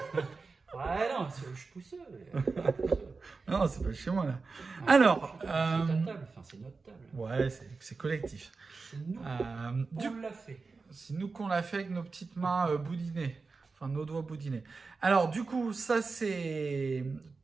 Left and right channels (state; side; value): quieter; left; 4.3 dB